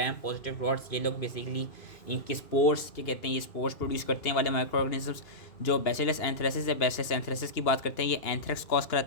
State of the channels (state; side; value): late; right; 2.8 ms